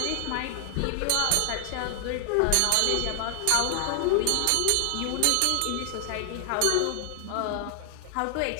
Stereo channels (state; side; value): different; both; correlation 0.00